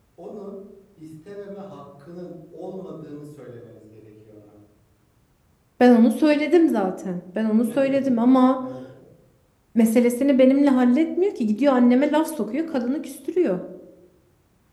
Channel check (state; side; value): identical; both; correlation 1.00